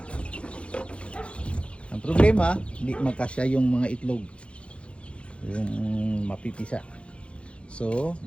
Ang problema, hindi magkasya yung mga itlog. Yung mapipisa. So,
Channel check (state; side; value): late; right; 0.060 ms